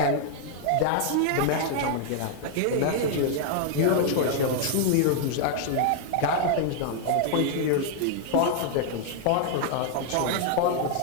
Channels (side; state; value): both; different; correlation 0.00